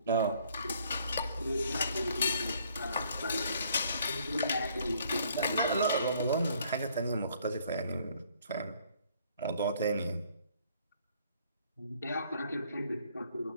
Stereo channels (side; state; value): both; inverted; correlation -0.63